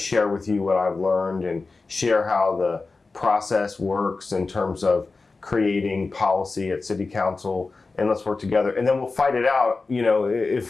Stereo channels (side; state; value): right; quieter; 3.9 dB